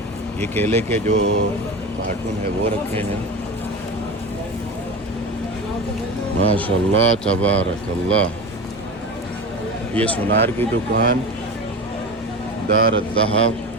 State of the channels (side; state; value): both; normal; correlation 0.28